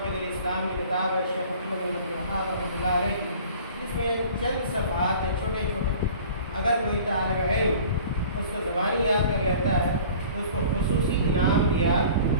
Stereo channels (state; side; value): inverted; both; correlation -0.46